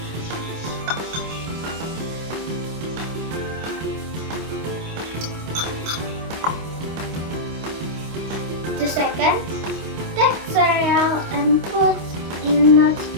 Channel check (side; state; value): left; late; 25 ms